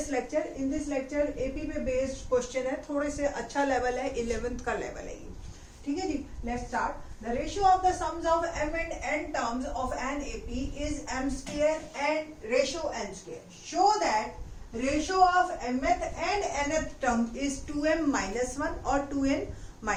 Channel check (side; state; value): both; identical; correlation 1.00